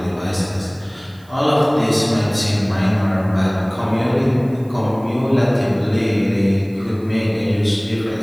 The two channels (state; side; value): noise; right; hiss, 30 dB below the sound